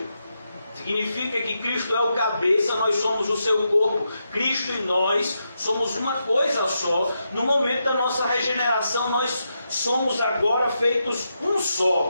Significa que Cristo é o cabeça, nós somos o seu corpo. Cristo e nós somos uma coisa só. No momento da nossa regeneração, nós somos agora feitos um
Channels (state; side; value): inverted; both; correlation -0.84